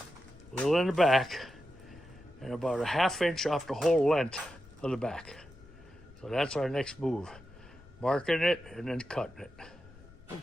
a little in the back, and about a ½ inch off the whole length of the back. So that's our next move. Marking it and then cutting it.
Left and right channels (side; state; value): left; noise; rumble, 22 dB below the sound